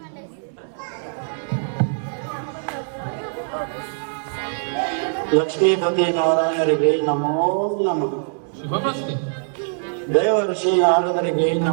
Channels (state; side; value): silent; left; digital silence